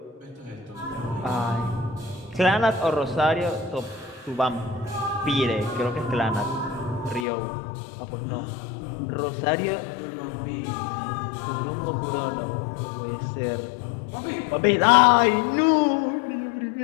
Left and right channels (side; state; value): right; drops out; at 7.2 s